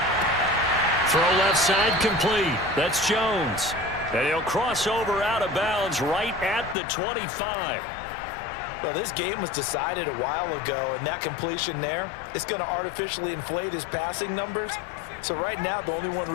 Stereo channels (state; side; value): drops out; right; at 6.8 s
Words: Throw left side complete. That's Jones. And he'll cross over out of bounds right at the 25. Well, this game was decided a while ago, and that completion there, it's going to artificially inflate his passing numbers. So right now, the only one